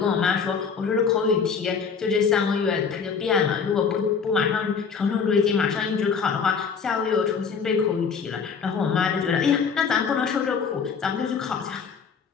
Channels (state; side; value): quieter; right; 5.9 dB